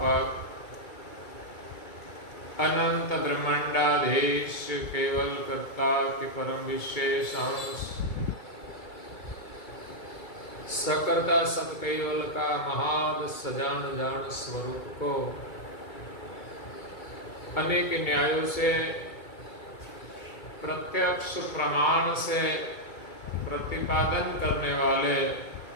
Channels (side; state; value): right; late; 2.2 ms